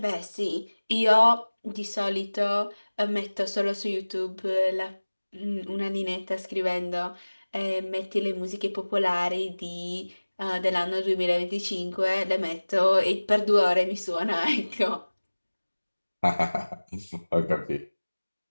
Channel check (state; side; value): inverted; both; correlation -1.00